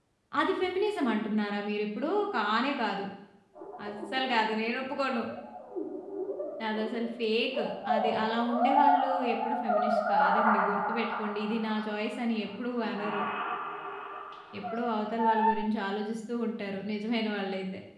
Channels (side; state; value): both; identical; correlation 1.00